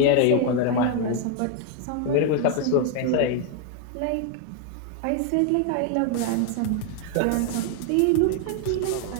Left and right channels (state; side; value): different; both; correlation 0.00